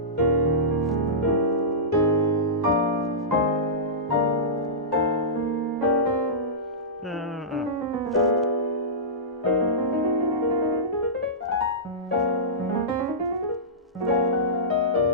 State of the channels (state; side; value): normal; both; correlation -0.18